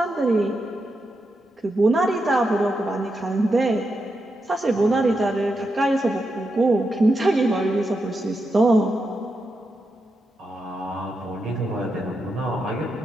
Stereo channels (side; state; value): both; normal; correlation 0.86